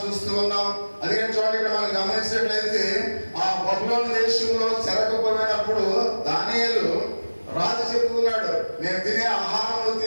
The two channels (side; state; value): both; inverted; correlation -1.00